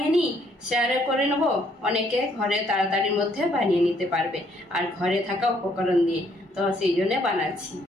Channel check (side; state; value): both; normal; correlation 0.67